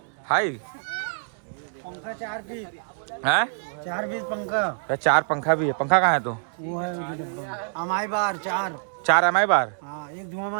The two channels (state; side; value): silent; left; digital silence